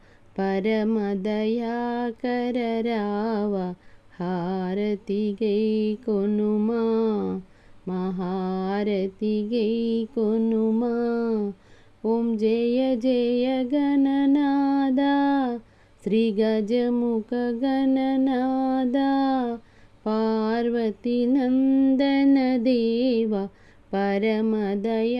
పరమదయాకర రావ హారతి గై కొనుమా మహారతి గై కొనుమా. ఓం జయ జయ గణనాదా శ్రీ గజముఖ గణనాదా పార్వతి నందన దేవ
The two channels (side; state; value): both; identical; correlation 1.00